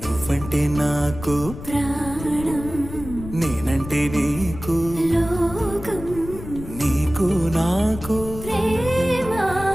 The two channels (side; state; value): left; noise; rumble, 12 dB below the sound